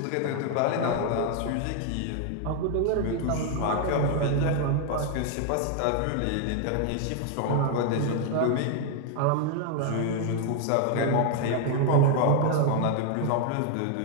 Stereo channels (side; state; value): both; different; correlation 0.00